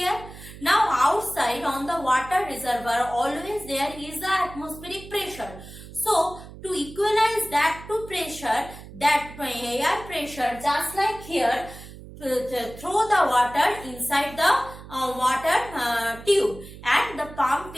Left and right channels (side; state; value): right; noise; hum, 16 dB below the sound